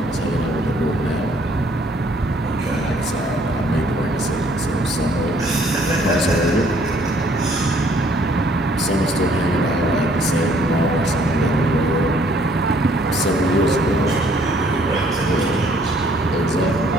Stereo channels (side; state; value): both; normal; correlation 0.62